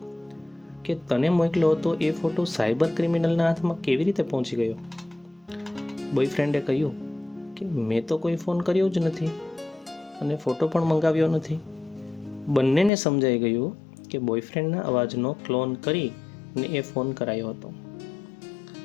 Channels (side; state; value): right; drops out; at 12.9 s